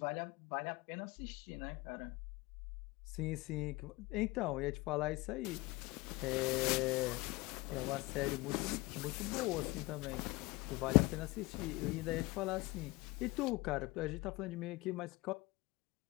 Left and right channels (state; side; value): quieter; right; 22.3 dB